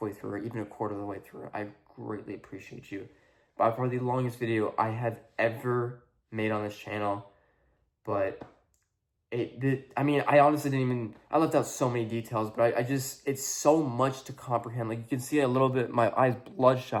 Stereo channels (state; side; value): identical; both; correlation 1.00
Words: through, or even a quarter of the way through, I greatly appreciate you. By far the longest video I have ever made on this channel, but I honestly I left out so many details, but it's so much to comprehend. Like, you can see a little bit, my eyes